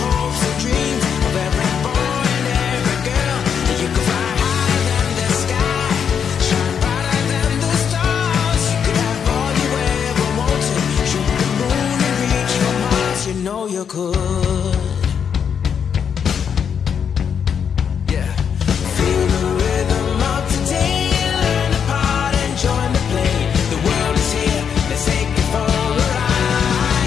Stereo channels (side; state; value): right; quieter; 7.4 dB